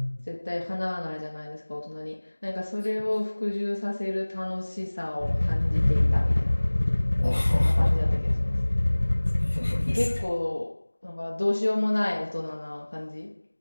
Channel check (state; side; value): inverted; both; correlation -1.00